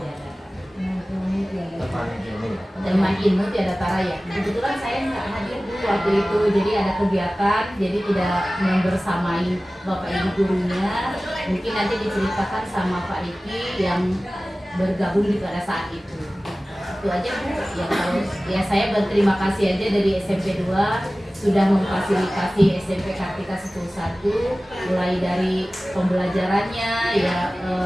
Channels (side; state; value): both; normal; correlation 0.97